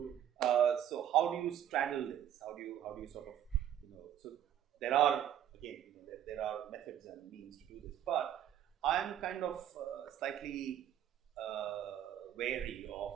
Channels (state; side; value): quieter; left; 10.6 dB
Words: So how do you straddle this? How do you sort of, so there are, again, there are methods and means to do this, but I'm kind of slightly wary of